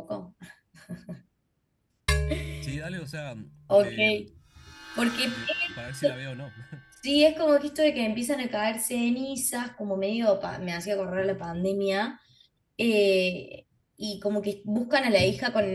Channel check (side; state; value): both; identical; correlation 1.00